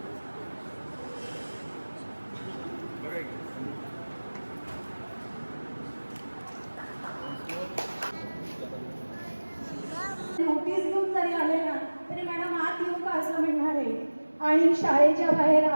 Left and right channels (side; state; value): both; inverted; correlation -1.00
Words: नोटीस घेऊन जरी आले ना तरी मॅडम आत येऊ का असं म्हणणार आहे. आणि शाळेच्या बाहेर